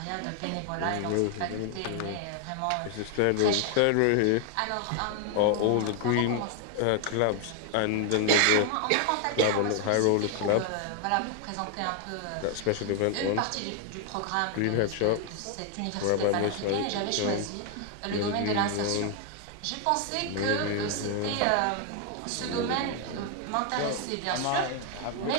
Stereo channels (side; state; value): both; different; correlation 0.00